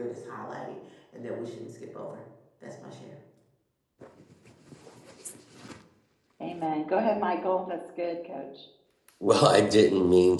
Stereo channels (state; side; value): identical; both; correlation 1.00